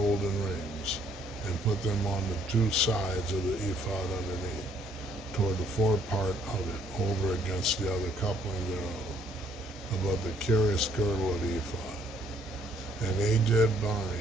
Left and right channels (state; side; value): normal; both; correlation 0.65